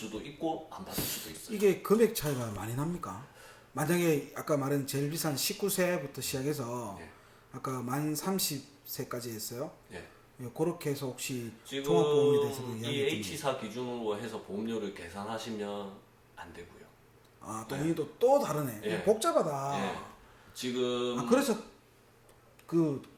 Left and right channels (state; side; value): identical; both; correlation 1.00